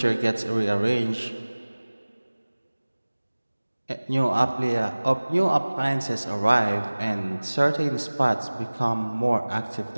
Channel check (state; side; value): inverted; both; correlation -1.00